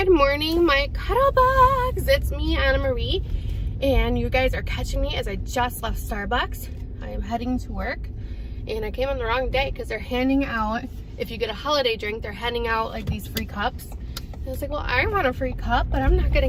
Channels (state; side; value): identical; both; correlation 1.00